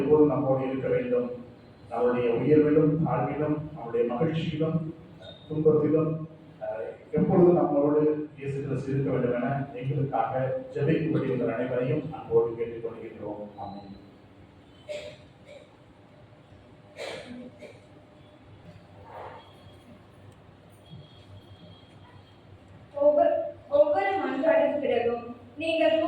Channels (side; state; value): both; identical; correlation 1.00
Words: நம்மோடு இருக்க வேண்டும். அவருடைய உயர்விலும் தாழ்விலும், அவருடைய மகிழ்ச்சியிலும் துன்பத்திலும் எப்பொழுதும் நம்மளோடு இயேசு கிறிஸ்து இருக்க வேண்டும் என எங்களுக்காக ஜெபிக்கும்படி உங்கள் அனைவரையும் அன்போடு கேட்டுக்கொள்கின்றோம். ஆமென். ஒவ்வொரு மன்றாடின் பிறகும் நீங்கள்